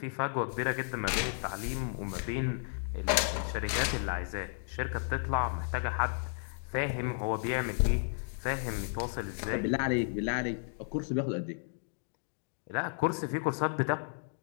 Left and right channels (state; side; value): silent; right; digital silence